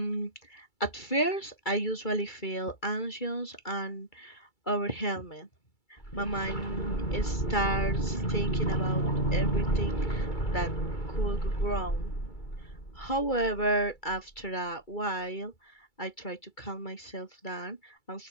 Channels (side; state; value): right; late; 2.3 ms